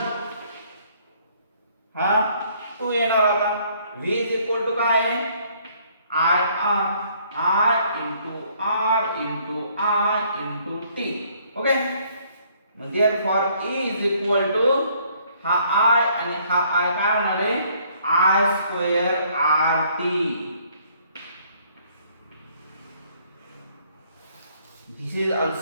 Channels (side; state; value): both; inverted; correlation -0.64